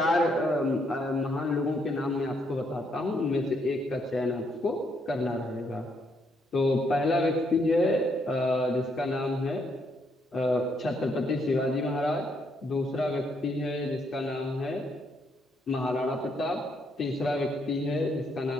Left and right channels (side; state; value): both; normal; correlation 0.74